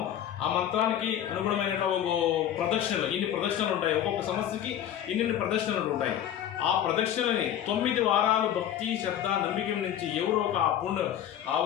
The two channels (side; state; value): right; quieter; 10.6 dB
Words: ఆ మంత్రానికి అనుగుణమైనట్ల ఒక ప్రదక్షిణలు ఇన్ని ప్రదక్షిణలు ఉంటాయి. ఒక్కొక్క సమస్యకి ఇన్ని ప్రదక్షిణలు ఉంటాయి. ఆ ప్రదక్షిణలని 9 వారాలు భక్తి శ్రద్ధ నమ్మిక నుంచి ఎవరో ఒక